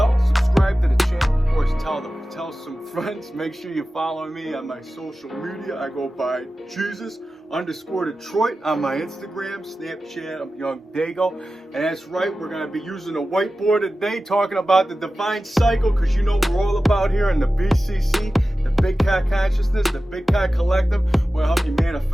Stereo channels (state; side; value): normal; both; correlation 0.94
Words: subscribe to the channel, of course, tell some friends. Make sure you follow me on my social media. I go by Jesus_Detroit on my Instagram, Snapchat. I'm YOUNGDAYGO. And that's right, we're going to be using a whiteboard today, talking about the divine cycle, because you know we're all about here in the BCC, the Big Cat Consciousness, the Big Cat Collective. Will help you